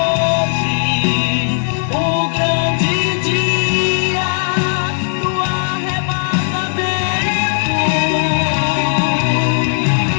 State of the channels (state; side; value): silent; right; digital silence